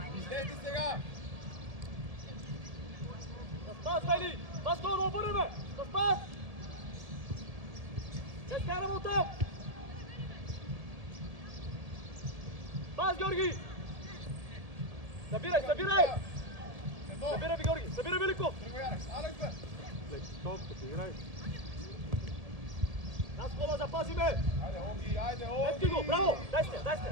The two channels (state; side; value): late; left; 1.7 ms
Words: Излезли сега! Да спас, Вели! Васко, да обърнеме! Да спас! Не скараме оттам! Пас, Георги! Събирай! Събирай, Георги! Събирай, Великов! Алекс, бе! Играй. Нас кола запазиме! Айде, Ето го, браво! Дай сте!